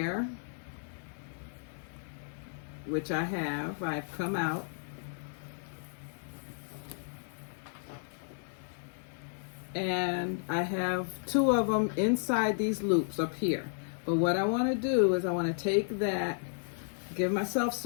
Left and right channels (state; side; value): silent; right; digital silence